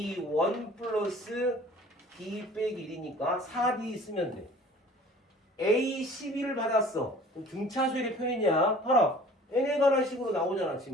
플러스 D 빼기 1이니까 4D 쓰면 돼. A12를 받았어. 그럼 등차수열의 표현이야. 봐라. n에 관한 식으로 나오잖아.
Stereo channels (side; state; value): both; normal; correlation 0.48